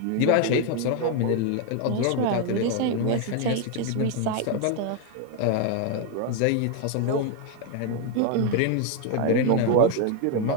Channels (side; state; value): both; different; correlation 0.01